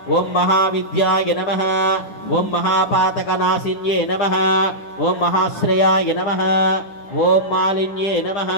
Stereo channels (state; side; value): late; right; 10 ms